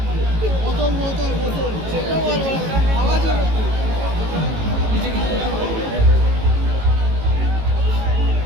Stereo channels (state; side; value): late; left; 18 ms